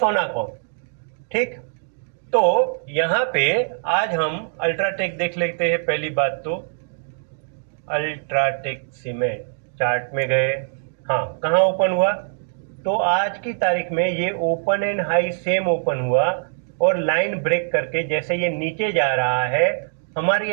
ठीक, तो यहाँ पे आज हम अल्ट्राटेक देख लेते हैं। पहली बात तो अल्ट्राटेक सीमेंट चार्ट में गए, हाँ कहाँ ओपन हुआ, तो आज की तारीख में ये open and high same open हुआ और लाइन ब्रेक करके जैसे ये नीचे जा रहा है हमारी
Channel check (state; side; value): silent; left; digital silence